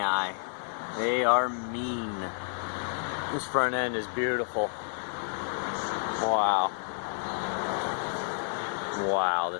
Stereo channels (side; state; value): right; silent; digital silence